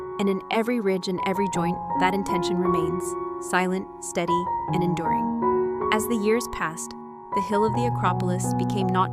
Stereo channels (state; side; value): identical; both; correlation 1.00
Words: And in every ridge and every joint, that intention remains, silent, steady, and enduring. As the years passed, the hill of the Acropolis became not